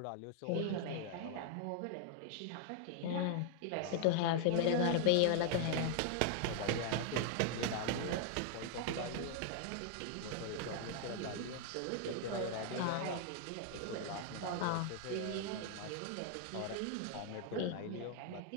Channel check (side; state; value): both; different; correlation 0.00